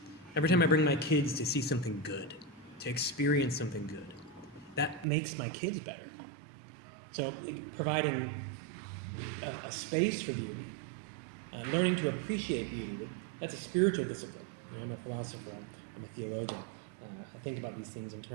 Every time I bring my kids to see something good, to experience something good, that makes my kids better. So providing a space for beauty, learning to appreciate beauty, that's a spiritual discipline. I'm a philosopher, I'm a theologian. I think about these things in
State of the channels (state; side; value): drops out; left; at 5.1 s